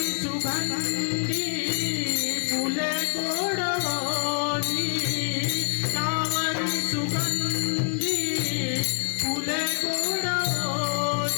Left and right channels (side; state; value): right; silent; digital silence